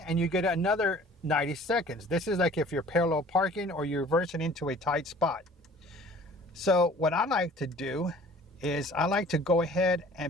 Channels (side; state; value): both; normal; correlation 0.49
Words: you get another 90 seconds. This is like if you're parallel parking or you're reversing into a tight spot. So what I like to do is I like to go ahead